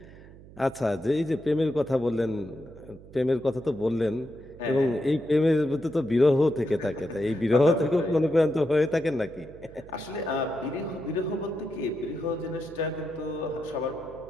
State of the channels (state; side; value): noise; right; hum, 20 dB below the sound